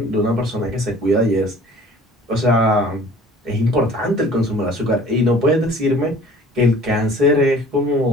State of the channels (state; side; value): normal; both; correlation 0.49